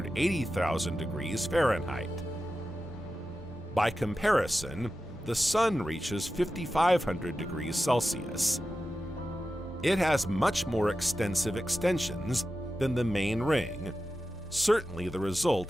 degrees Fahrenheit. By comparison, the Sun reaches 5,500 degrees Celsius. It has much more extensive extensions than the main ring, certainly the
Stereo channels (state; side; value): normal; both; correlation 0.92